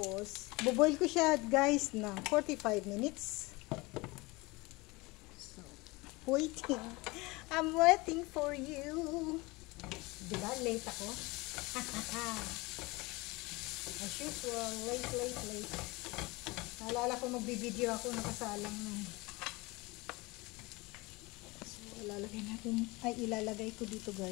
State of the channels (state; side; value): quieter; right; 23.8 dB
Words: buboil ko siya, guys, ng 45 minutes. So, waiting. I'm waiting for you. Diba? Late ako. As usual, late. Naalala ko magbibideo ako, nakasalang na. So, ilalagay natin, ilalagay ko dito,